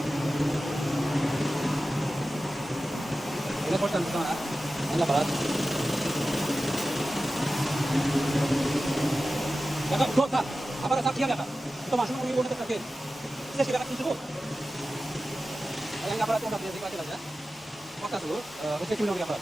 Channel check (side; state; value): both; normal; correlation 0.94